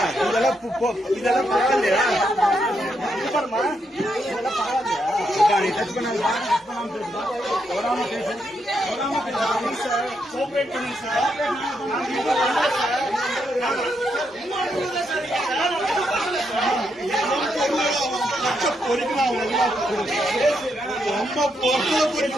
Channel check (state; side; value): normal; both; correlation 0.80